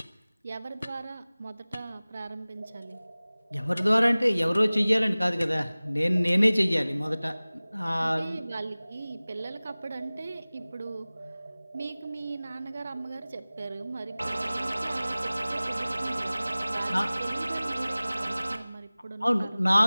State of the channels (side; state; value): both; inverted; correlation -0.99